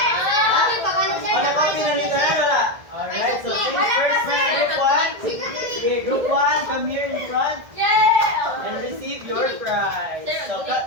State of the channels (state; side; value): late; left; 1.6 ms